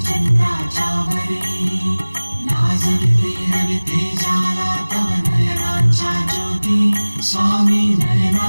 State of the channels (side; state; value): both; inverted; correlation -1.00